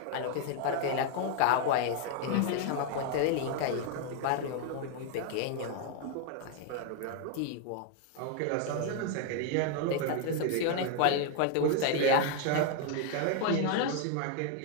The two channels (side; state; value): both; different; correlation 0.01